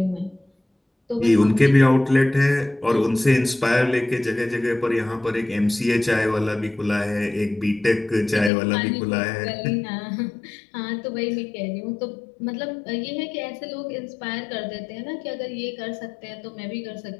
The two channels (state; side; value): drops out; right; at 8.5 s